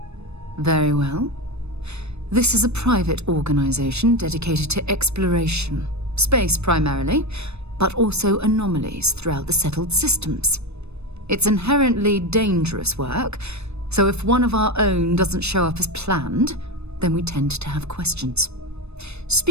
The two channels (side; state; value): left; late; 0.80 ms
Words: Very well. This is a private organization dedicated to exploration. Space primarily, but also anomalies throughout the settled systems. It's inherently dangerous work, so if one of our own doesn't show up as planned, then we tend to have questions.